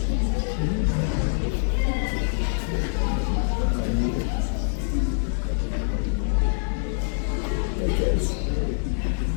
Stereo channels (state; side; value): silent; right; digital silence